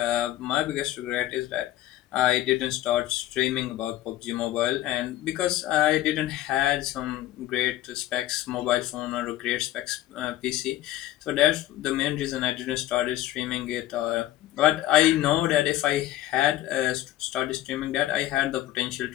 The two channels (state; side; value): quieter; right; 14.5 dB